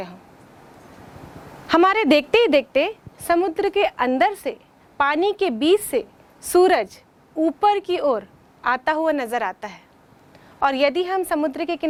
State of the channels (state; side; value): identical; both; correlation 1.00